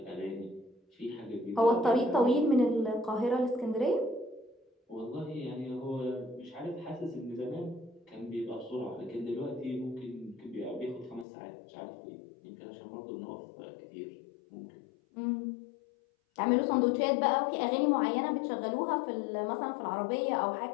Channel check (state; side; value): drops out; right; at 11.2 s